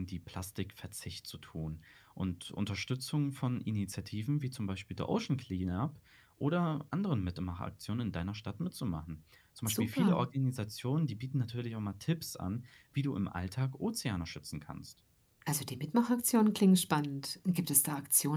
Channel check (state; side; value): identical; both; correlation 1.00